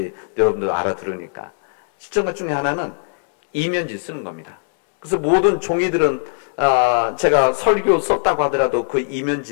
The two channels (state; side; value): silent; right; 66 dB below the other